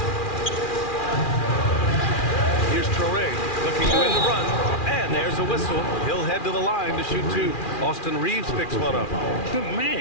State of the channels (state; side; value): late; right; 2.4 ms